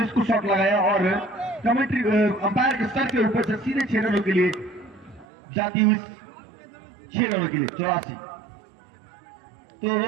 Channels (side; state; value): left; drops out; at 5.2 s